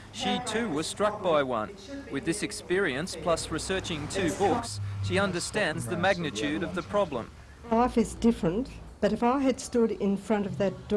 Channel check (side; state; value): both; identical; correlation 1.00